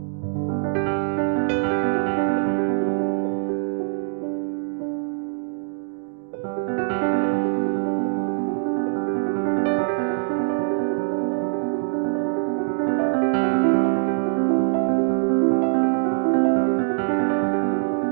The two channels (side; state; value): left; silent; 63 dB below the other